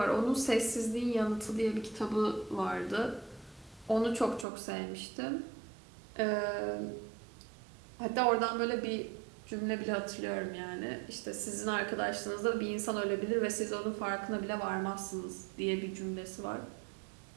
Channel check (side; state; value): left; drops out; at 4.5 s